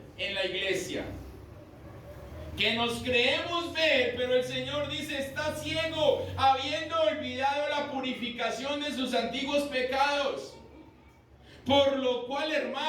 en la iglesia? Que nos creemos ver, pero el Señor dice, está ciego, habiendo olvidado la purificación de sus antiguos pecados. Por lo cual,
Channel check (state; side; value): identical; both; correlation 1.00